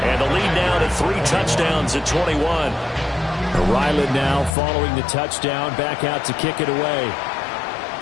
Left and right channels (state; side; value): drops out; right; at 4.5 s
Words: the lead now to 3 touchdowns at 21. Ryland now following the touchdown, back out to kick it away.